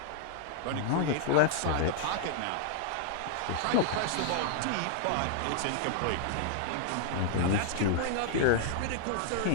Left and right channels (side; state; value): both; different; correlation -0.01